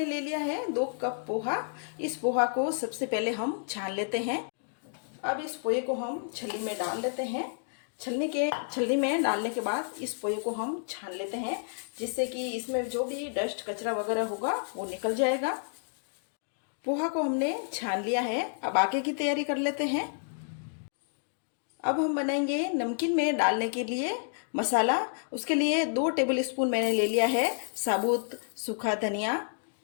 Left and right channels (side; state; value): right; silent; digital silence